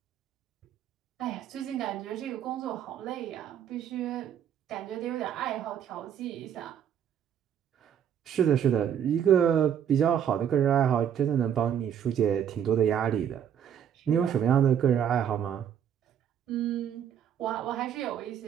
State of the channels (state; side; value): quieter; left; 9.0 dB